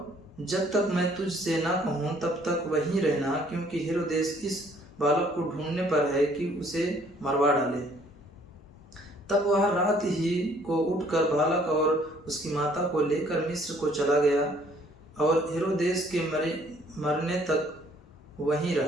जब तक मैं तुझसे ना कहूं तब तक वहीं रहना, क्योंकि हेरोदेस इस बालक को ढूंढने पर है कि उसे मरवा डाले। तब वह रात ही को उठकर बालक और उसकी माता को लेकर मिस्र को चला गया, और हेरोदेस के मरने तक वहीं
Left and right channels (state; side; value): normal; both; correlation 0.61